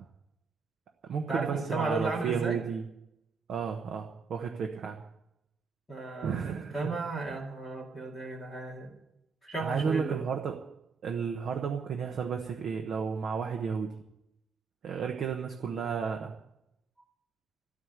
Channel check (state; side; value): quieter; left; 5.2 dB